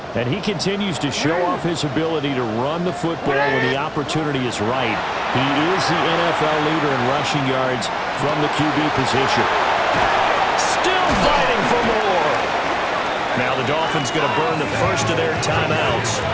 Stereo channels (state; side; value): identical; both; correlation 1.00